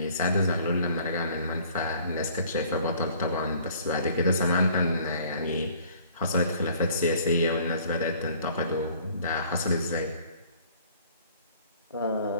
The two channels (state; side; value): inverted; both; correlation -0.55